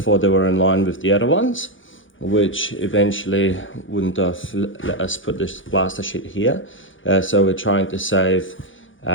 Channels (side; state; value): right; late; 0.57 ms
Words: they were in line with the other ones, which eventually wouldn't have let us put this plaster sheet here. So we're trying to save